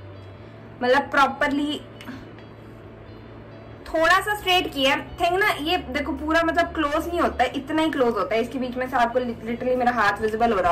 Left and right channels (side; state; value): both; identical; correlation 1.00